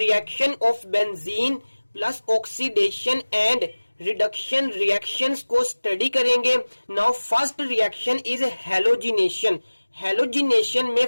of benzene plus oxidation and reduction reactions को study करेंगे। Now first reaction is halogenation. Halogenation में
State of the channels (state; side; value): inverted; both; correlation -1.00